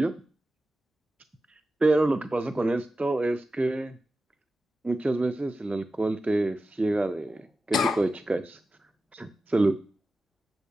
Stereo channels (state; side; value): normal; both; correlation 0.93